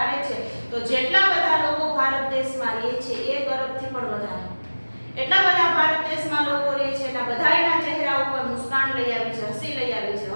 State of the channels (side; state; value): both; inverted; correlation -1.00